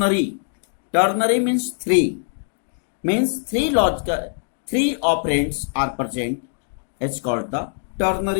Ternary means three. Means three operands are present. It's called the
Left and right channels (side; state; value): right; silent; digital silence